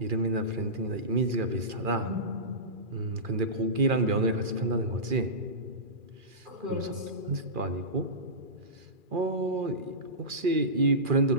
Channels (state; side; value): late; left; 2.4 ms